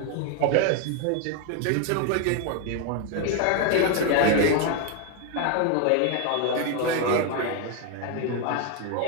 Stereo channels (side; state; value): both; different; correlation 0.01